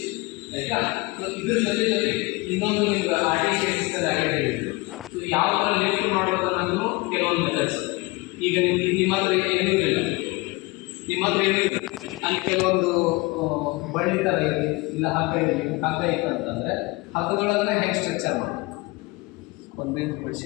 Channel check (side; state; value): right; quieter; 24.2 dB